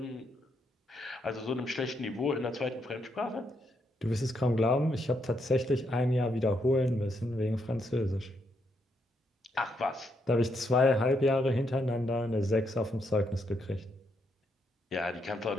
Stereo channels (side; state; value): both; normal; correlation 0.78